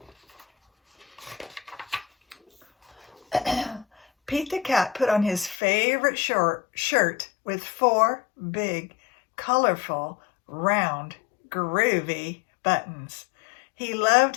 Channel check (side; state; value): right; drops out; at 5.6 s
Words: Pete the Cat put on his favorite shirt with 4 big, colorful, round, groovy buttons. He loved